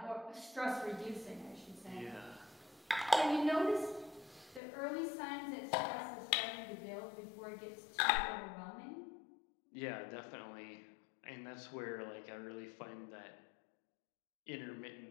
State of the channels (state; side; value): drops out; right; at 4.6 s